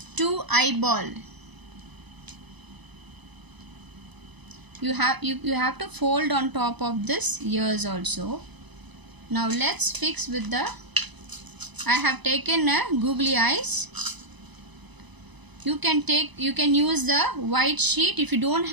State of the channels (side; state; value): left; late; 1.0 ms